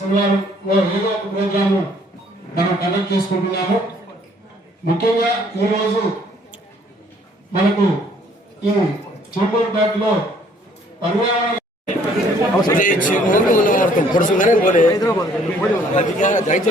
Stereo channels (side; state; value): both; normal; correlation 0.61